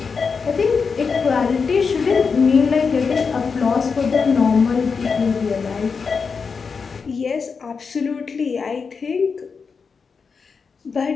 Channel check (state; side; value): quieter; right; 5.4 dB